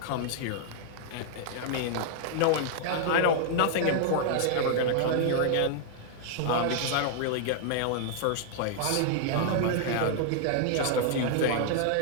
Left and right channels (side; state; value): both; different; correlation -0.01